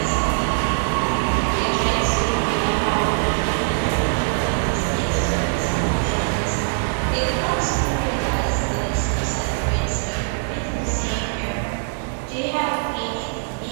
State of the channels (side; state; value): left; silent; digital silence